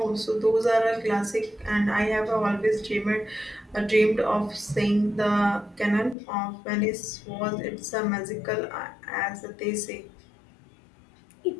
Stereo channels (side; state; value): right; drops out; at 6.2 s